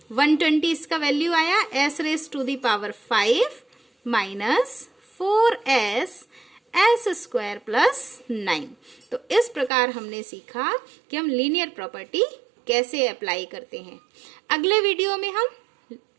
120 इसका वैल्यू आया s raise to the power 5 minus 4s s square plus 9। तो इस प्रकार हमने सीखा कि हम लीनियर प्रॉपर्टी कैसे अप्लाई करते हैं। अगले वीडियो में हम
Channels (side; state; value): left; drops out; at 9.7 s